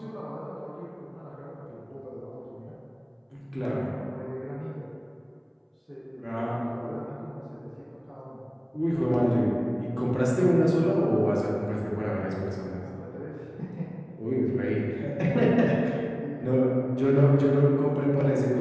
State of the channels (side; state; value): both; identical; correlation 1.00